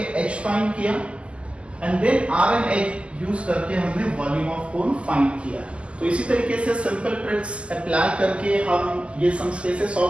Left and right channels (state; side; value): late; left; 0.055 ms